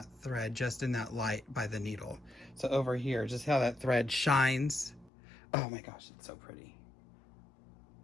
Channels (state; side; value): drops out; right; at 5.1 s